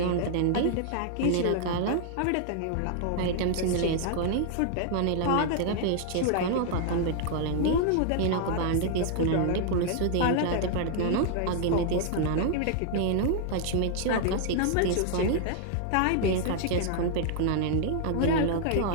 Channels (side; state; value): both; different; correlation -0.01